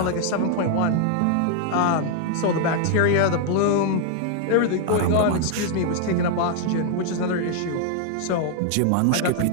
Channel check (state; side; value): different; both; correlation 0.00